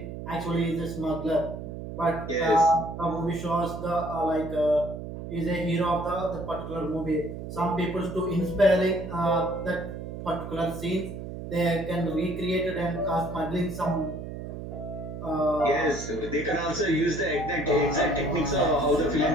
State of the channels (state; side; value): noise; right; hum, 9 dB below the sound